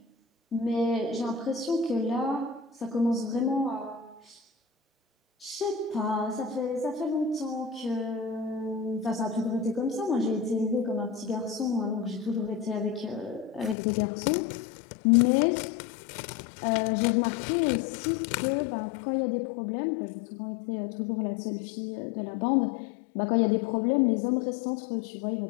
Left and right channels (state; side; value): drops out; right; at 13.8 s